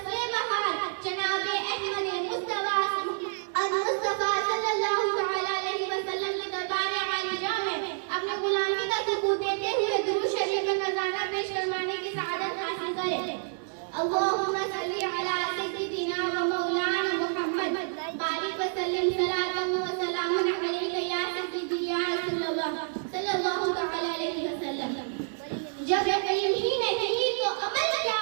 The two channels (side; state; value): left; silent; digital silence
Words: बहार, जनाब-ए अहमद मुस्तफ़ा सल्लल्लाहु तआला अलैहि वसल्लम के दरबार-ए आलिया में अपने गुलामी का सुकून देते हुए दुरूद शरीफ का नज़ारा पेश करवाने की सआदत हासिल करें। अल्लाहुम्मा सल्ली अला सय्यिदिना व मौलाना मुहम्मद बारिक व सल्लिम सलातन व सलामन अलैका या सय्यिदी या रसूलल्लाह सल्लल्लाहु तआला अलैहि वसल्लम। जब यकीन ही नहीं तो अमल क्या